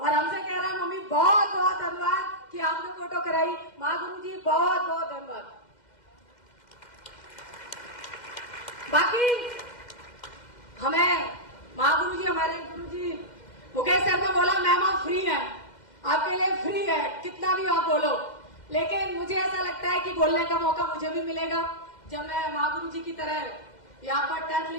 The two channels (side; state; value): right; late; 2.1 ms